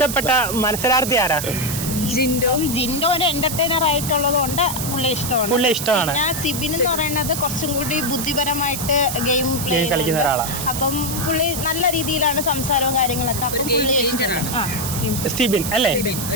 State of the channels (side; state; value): right; noise; hiss, 5 dB below the sound